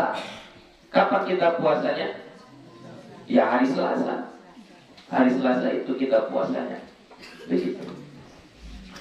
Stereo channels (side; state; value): both; identical; correlation 1.00